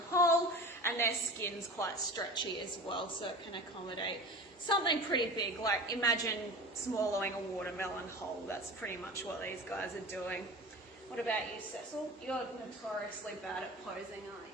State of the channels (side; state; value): both; normal; correlation 0.34